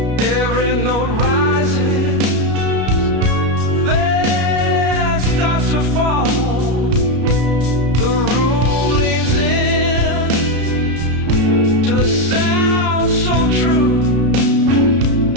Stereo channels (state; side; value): late; left; 33 ms